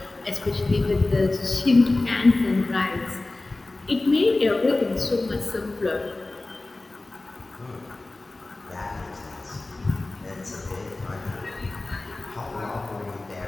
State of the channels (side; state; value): right; quieter; 3.0 dB